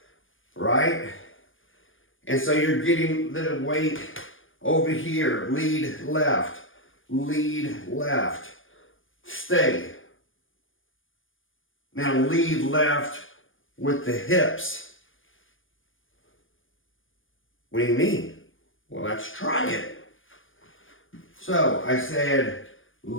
right? And so you're getting the weight over here. Lead left, stay. Now lead left with the hips. What do you mean? Well, let's try it. So I said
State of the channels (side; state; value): right; late; 0.58 ms